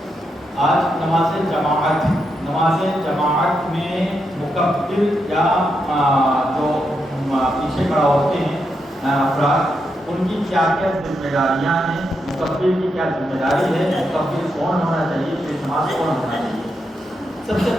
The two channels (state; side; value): normal; both; correlation 0.83